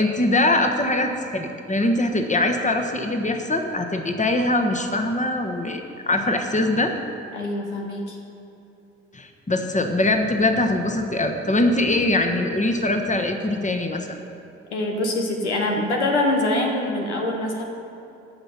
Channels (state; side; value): normal; both; correlation 0.31